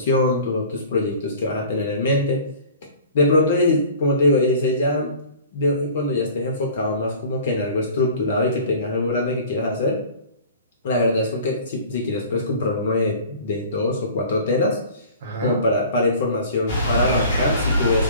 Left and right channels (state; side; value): inverted; both; correlation -0.45